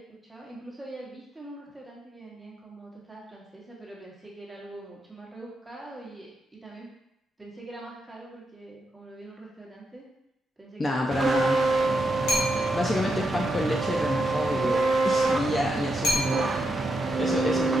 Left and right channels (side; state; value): both; normal; correlation 0.83